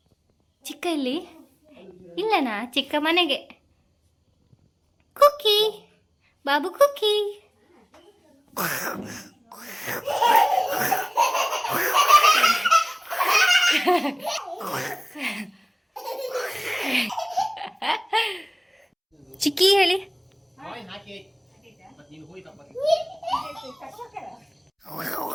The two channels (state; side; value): identical; both; correlation 1.00